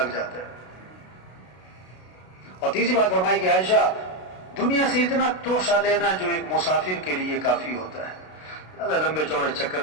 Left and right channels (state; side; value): late; right; 32 ms